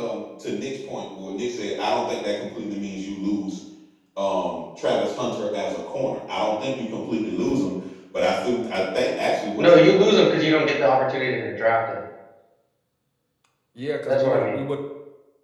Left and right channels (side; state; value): both; identical; correlation 1.00